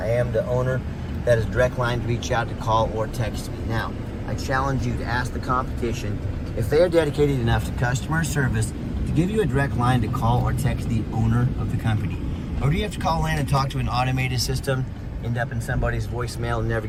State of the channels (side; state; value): both; identical; correlation 1.00